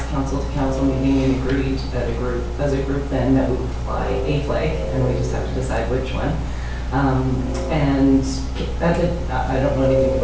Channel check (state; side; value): identical; both; correlation 1.00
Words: council-to-council meeting and agreed that as a group then that we would fly a flag, and we just have to decide which one. And I don't know anything